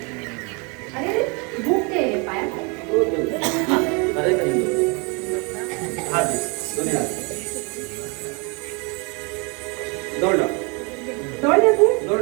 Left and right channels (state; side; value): quieter; left; 31.7 dB